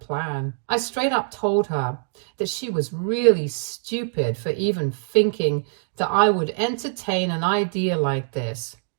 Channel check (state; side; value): silent; left; digital silence